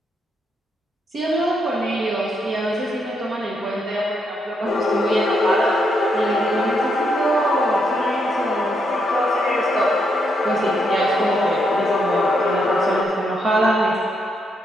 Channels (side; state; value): both; normal; correlation 0.78